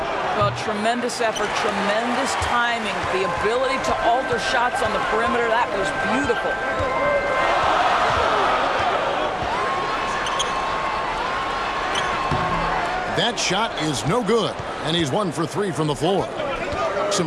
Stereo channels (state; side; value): identical; both; correlation 1.00